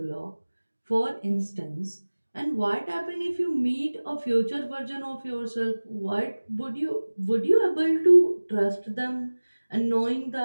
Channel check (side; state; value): both; inverted; correlation -1.00